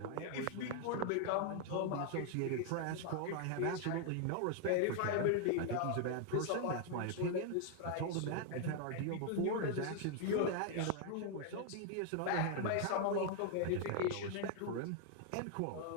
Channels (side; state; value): both; different; correlation 0.00